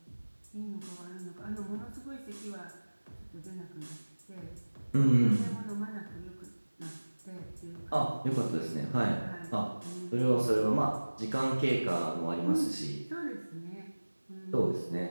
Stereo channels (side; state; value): both; inverted; correlation -1.00